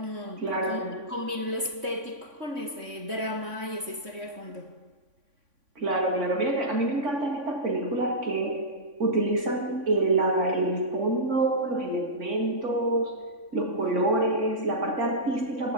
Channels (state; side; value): late; left; 3.5 ms